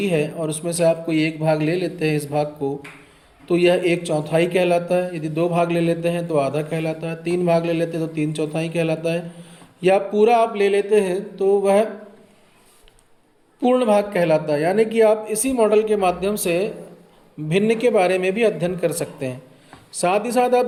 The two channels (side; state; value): both; identical; correlation 1.00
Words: है और उसमें से आप कोई एक भाग ले लेते हैं इस भाग को, तो यह एक चौथाई कहलाता है। यदि दो भाग ले लेते हैं तो आधा कहलाता है, तीन भाग ले लेते हैं तो तीन चौथाई कहलाता है, या पूरा आप ले लेते हैं तो वह पूर्ण भाग कहलाता है। यानी कि आप इसी मॉडल के माध्यम से भिन्न के बारे में भी अध्ययन कर सकते हैं। साथ ही साथ आप